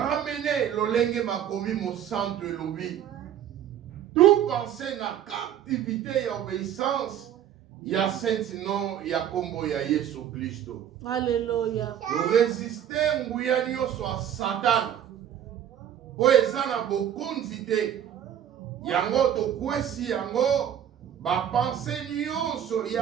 lolenge makomi mosanto elobi. Tout penser na captivité ya obéissance ya saint nom ya kombo ya Yesu Kristo. Alléluia. Résister nguya nyonso a Satan. Po eza na bokonzi te. Yango tokwesi yango ba pensée nyonso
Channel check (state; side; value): quieter; left; 10.0 dB